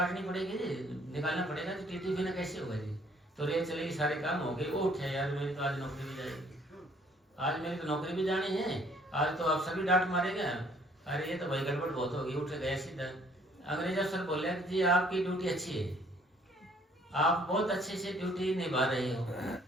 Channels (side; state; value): both; normal; correlation 0.61